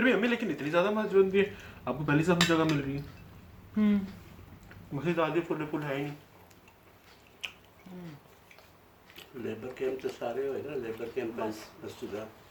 भी हमें लेकिन इतनी ज़्यादा मस्जिद भी है, आपको पहली सफ में जगह मिल रही है। मस्जिद आधी फुल है ही नहीं। लेबर कैंप तो सारे हुए ना, लेबर कैंप मस्जिद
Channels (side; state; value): both; identical; correlation 1.00